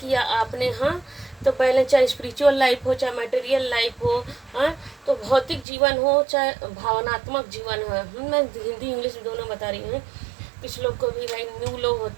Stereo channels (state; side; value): drops out; left; at 5.7 s